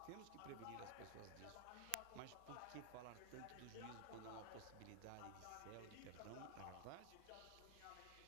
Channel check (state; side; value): different; both; correlation 0.00